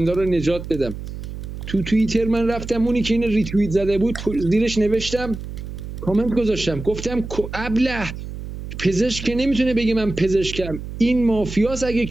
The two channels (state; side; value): noise; right; hum, 9 dB below the sound